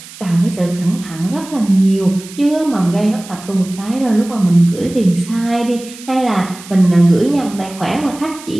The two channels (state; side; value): noise; right; hiss, 17 dB below the sound